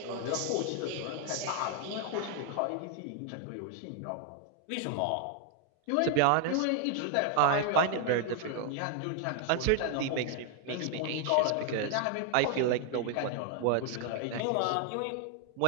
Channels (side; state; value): both; different; correlation 0.00